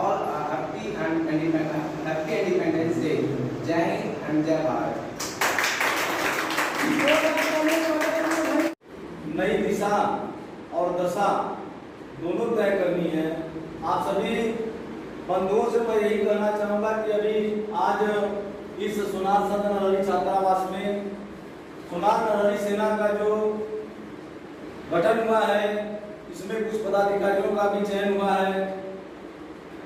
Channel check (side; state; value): both; identical; correlation 1.00